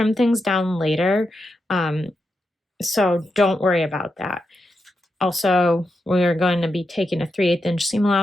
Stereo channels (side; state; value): both; normal; correlation 0.86